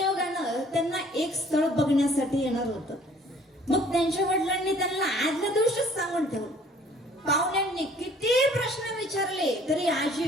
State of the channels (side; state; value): both; normal; correlation 0.56